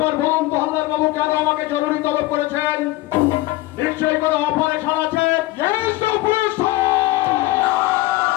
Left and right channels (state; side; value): quieter; right; 18.6 dB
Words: বলুন তো হালদার বাবু কেন আমাকে জরুরি তলব করেছেন? নিশ্চয়ই কোনো অপারেশন আছে।